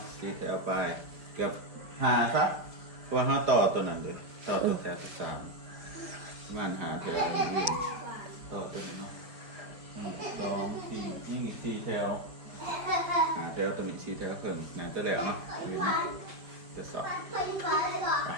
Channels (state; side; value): late; left; 5.0 ms